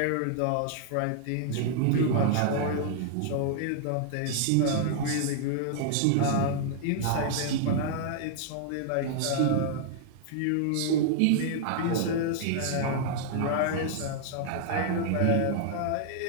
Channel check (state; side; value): different; both; correlation -0.01